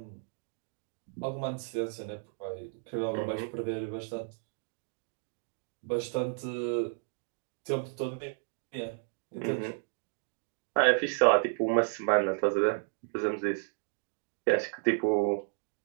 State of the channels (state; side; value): silent; left; digital silence